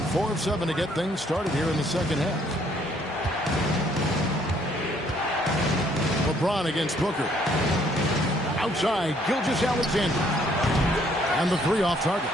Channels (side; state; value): both; normal; correlation 0.65